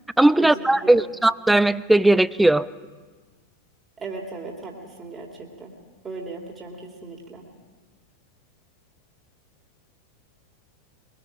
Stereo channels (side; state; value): both; normal; correlation 0.97